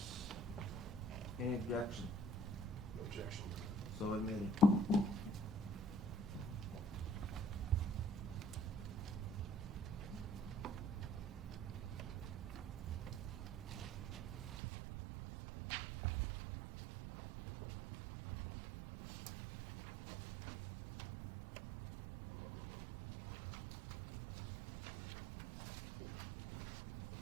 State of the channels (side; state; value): left; drops out; at 14.6 s